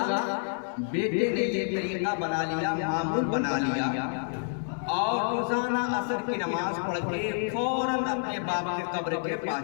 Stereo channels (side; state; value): right; silent; digital silence